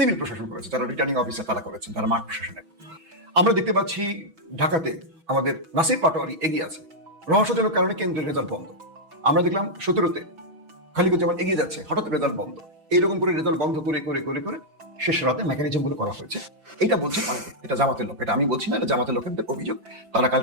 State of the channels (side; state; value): left; late; 6.1 ms